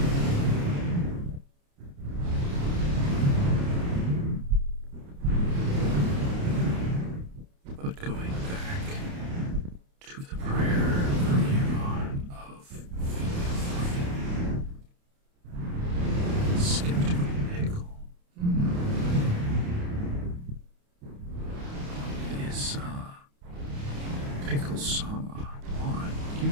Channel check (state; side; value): late; left; 29 ms